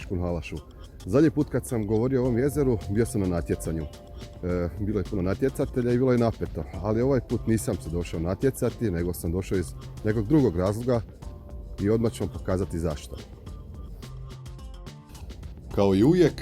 Halašu. Zadnji put kad sam govorio o ovom jezeru, bio sam na natjecanju. Bilo je puno natjecatelja i bilo je napeto, ali ovaj put nisam se došao natjecati, nego sam došao iz nekog drugog razloga i odmah ću vam pokazati zašto. Kao i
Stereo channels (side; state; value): both; identical; correlation 1.00